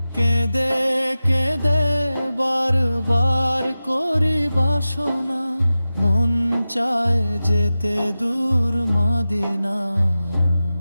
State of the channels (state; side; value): inverted; both; correlation -0.95